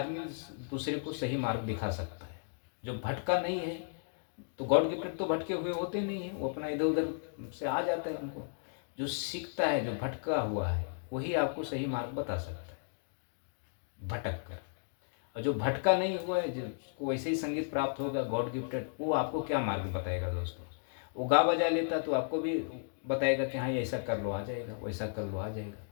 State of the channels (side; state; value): right; silent; digital silence